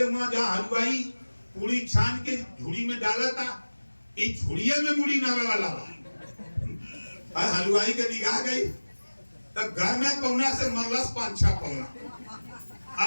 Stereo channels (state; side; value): inverted; both; correlation -1.00